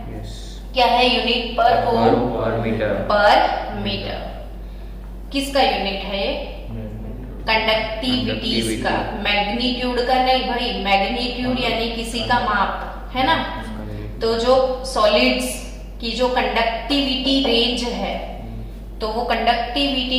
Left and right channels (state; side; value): identical; both; correlation 1.00